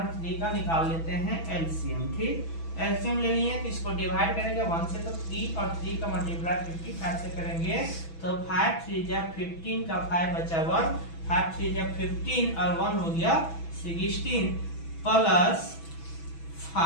3 का निकाल लेते हैं एलसीएम, ठीक। एलसीएम ले लिए तो इसको डिवाइड करेंगे 1 से, तो 3 और 3 का मल्टीप्लाई 55 से करेंगे तो 5 3 जा 15 का 5 बचा 1, 5 3 जा 15 और 1 हो गया 16 प्लस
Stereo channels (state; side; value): late; right; 6.1 ms